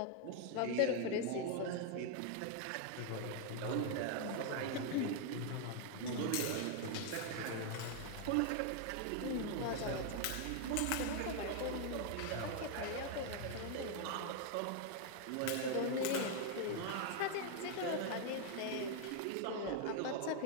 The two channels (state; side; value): different; both; correlation 0.00